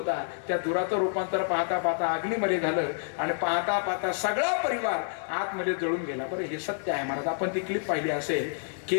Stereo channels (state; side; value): silent; right; 59 dB below the other